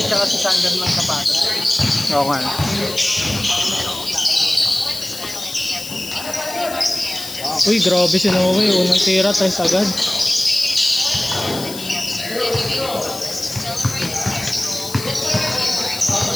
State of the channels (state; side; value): noise; left; hiss, 11 dB below the sound